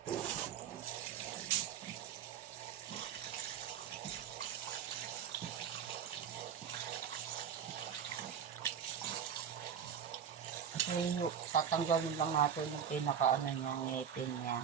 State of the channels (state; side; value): quieter; left; 8.2 dB